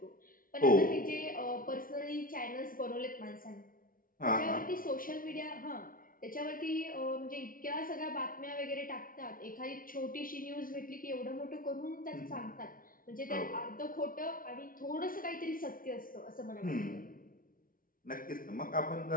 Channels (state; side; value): late; right; 0.41 ms